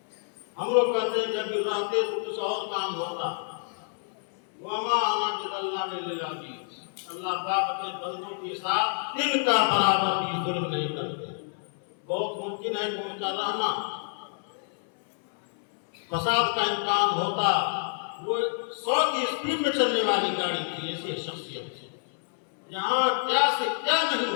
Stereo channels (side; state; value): right; silent; 59 dB below the other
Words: ہم لوگ کہتے ہیں کہ ابھی رہتے تو کچھ اور کام ہوتا۔ وَمَا أَنَا بِظَلَّامٍ لِّلْعَبِيدِ، اللہ پاک اپنے بندوں کے ساتھ ان کا برابر بھی ظلم نہیں کرتے۔ بہت ممکن ہے کہ ان کا رہنا فساد کا امکان ہوتا، وہ 100 کی اسپیڈ میں چلنے والی گاڑی تھی، ایسی شخصیت تھی، یہاں کیا سے کیا